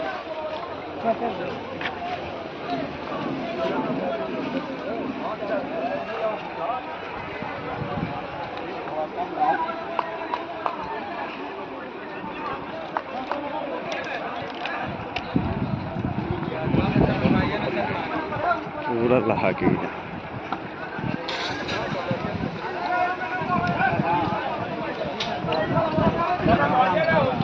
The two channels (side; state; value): both; identical; correlation 1.00